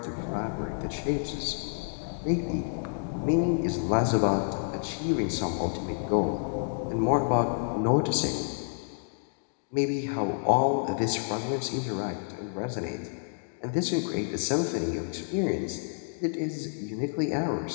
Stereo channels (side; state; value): right; silent; digital silence